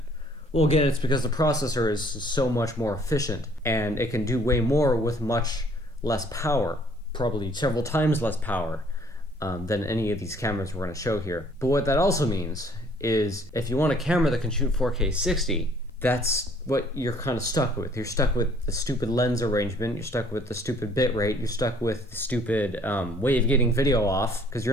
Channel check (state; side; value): normal; both; correlation 0.59